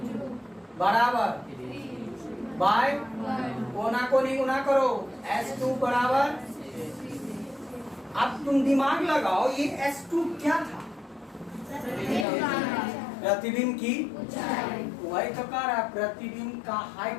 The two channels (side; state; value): right; drops out; at 12.2 s